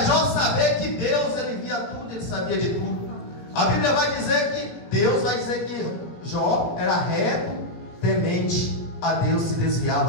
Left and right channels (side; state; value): right; late; 17 ms